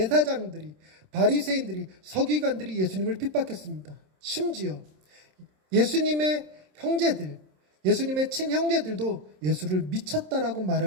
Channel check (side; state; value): left; late; 27 ms